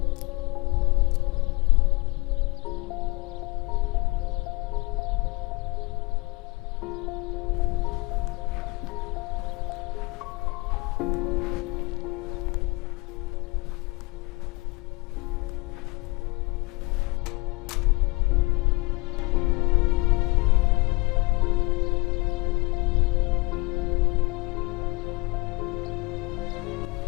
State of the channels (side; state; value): right; quieter; 25.4 dB